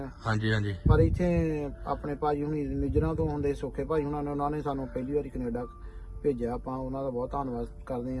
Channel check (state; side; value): identical; both; correlation 1.00